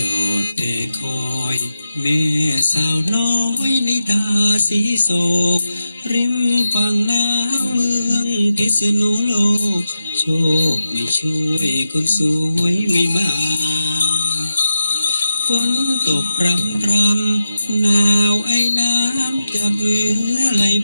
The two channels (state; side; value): inverted; both; correlation -0.90